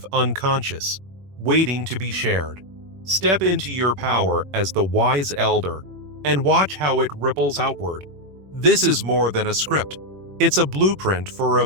unconscious, waiting to be shared. Step into your power as the wise elder and watch how it ripples outward. This is more than a script. It's a blueprint for a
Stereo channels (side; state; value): left; late; 21 ms